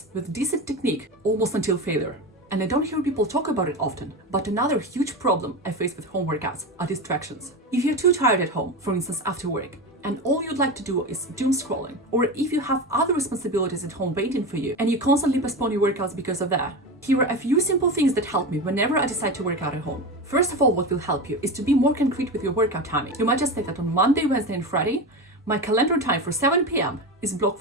with decent technique almost until failure. And I don't hear people talk about it often, but another huge problem I face with home workouts are distractions. If you're too tired at home, for instance after work, and all you'd like to do is doom scrolling, or if you have other responsibilities at home waiting for you and you constantly postpone your workouts because of that, here are a few simple things that help me whenever I decide to work out at home. First of all, what will help you is to be more concrete with your workout timing. You might just say that on Monday, Wednesday and Friday, my calendar time for 7 p.m. is blocked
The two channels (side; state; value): both; normal; correlation 0.22